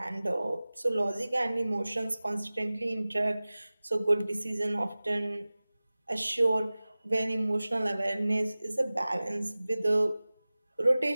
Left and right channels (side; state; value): both; inverted; correlation -0.98